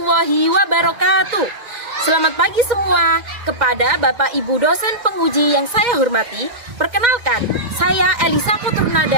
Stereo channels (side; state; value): left; late; 2.1 ms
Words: wabarakatuh. Selamat pagi semua. Kepada Bapak Ibu dosen penguji yang saya hormati, perkenalkan, saya Elisa